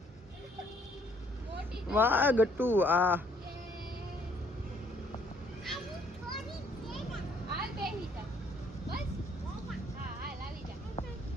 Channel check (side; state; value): both; normal; correlation 0.65